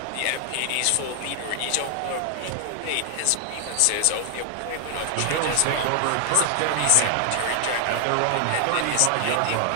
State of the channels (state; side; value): different; both; correlation 0.00